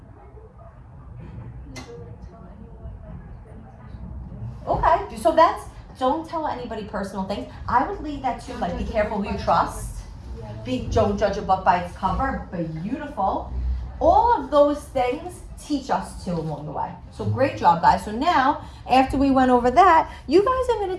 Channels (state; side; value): identical; both; correlation 1.00